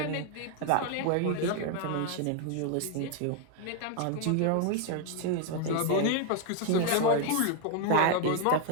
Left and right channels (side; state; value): both; different; correlation 0.00